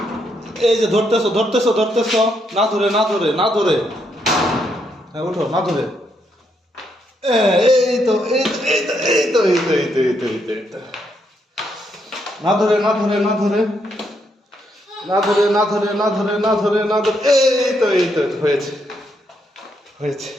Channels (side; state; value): both; normal; correlation 0.77